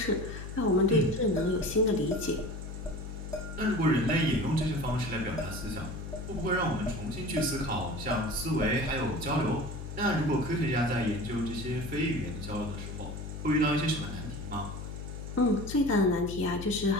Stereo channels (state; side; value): noise; left; hum, 8 dB below the sound